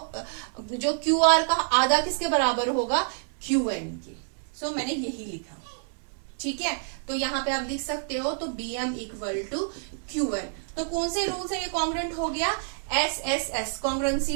QR का आधा किसके बराबर होगा, QN के। सो मैंने यही लिखा, ठीक है। तो यहाँ पे आप लिख सकते हो, तो BM इक्वल टू QN। तो कौन से रूल से ये कॉन्ग्रुएंट हो गया, SSS congruency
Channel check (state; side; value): silent; left; 60 dB below the other